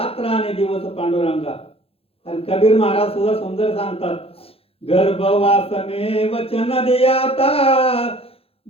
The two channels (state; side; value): late; right; 0.28 ms